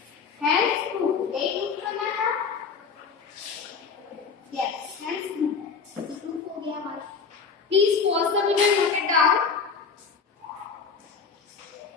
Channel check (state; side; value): quieter; right; 5.5 dB